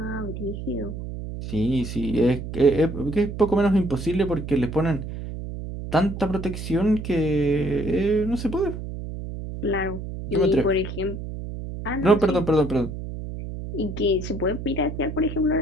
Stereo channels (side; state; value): right; noise; hum, 8 dB below the sound